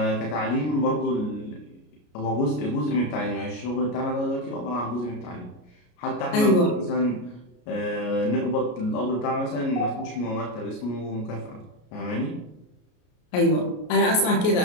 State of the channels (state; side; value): late; right; 33 ms